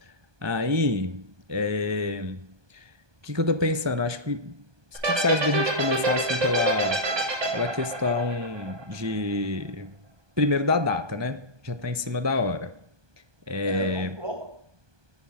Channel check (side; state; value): left; late; 1.2 ms